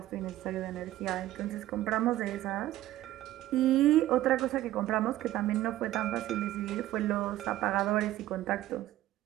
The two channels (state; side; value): quieter; left; 14.6 dB